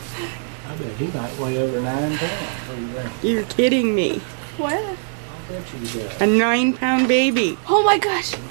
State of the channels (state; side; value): silent; left; digital silence